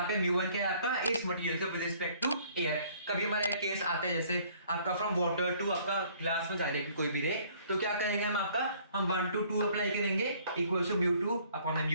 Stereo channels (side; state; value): both; inverted; correlation -0.58